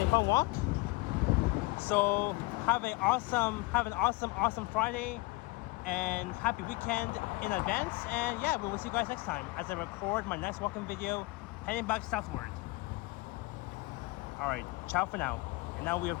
a fun walk. So have an awesome Friday and happy weekend in advance. And yeah, we will see you guys next time as I record my next walking video heading back southward. All right, ciao for now. And now we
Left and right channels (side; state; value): right; quieter; 23.4 dB